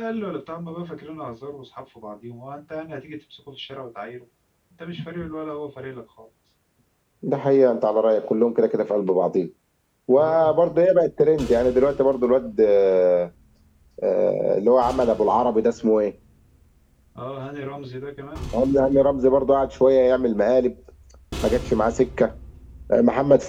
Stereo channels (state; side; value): identical; both; correlation 1.00